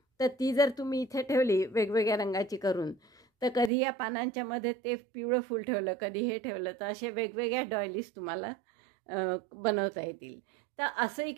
तर ती जर तुम्ही इथे ठेवली वेगवेगळ्या रंगाची करून, तर कधी या पानांच्या मध्ये ते पिवळं फूल ठेवलं, कधी हे ठेवलं, तर असे वेगवेगळ्या डॉयलीज तुम्हाला बनवता येतील। तर असंही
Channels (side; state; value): left; drops out; at 3.7 s